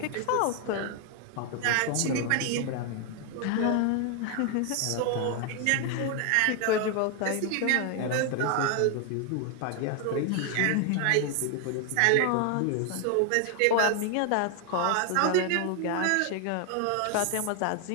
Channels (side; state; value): both; different; correlation 0.00